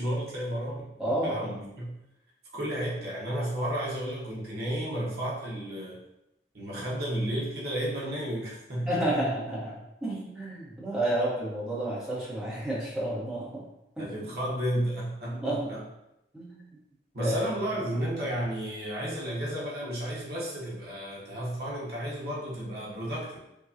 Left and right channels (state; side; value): normal; both; correlation 0.60